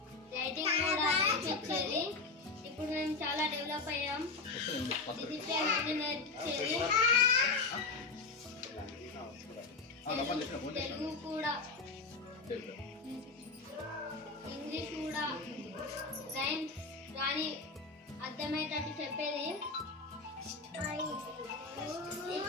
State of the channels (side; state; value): right; quieter; 4.0 dB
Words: రైటింగ్ కూడా నేర్పించేది. ఇప్పుడు మేము చాలా డెవలప్ అయ్యాం. డిసిప్లిన్ అన్ని నేర్పించేది, తెలుగు కూడా, ఇంగ్లీష్ కూడా, రైమ్స్ కానీ అర్థమయ్యేటట్టు చెప్పేది.